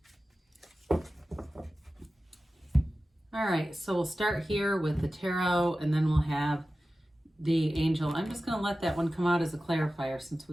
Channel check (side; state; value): both; normal; correlation 0.95